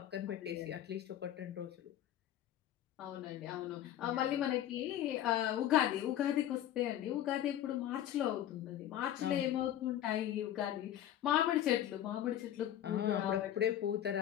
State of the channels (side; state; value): right; quieter; 11.6 dB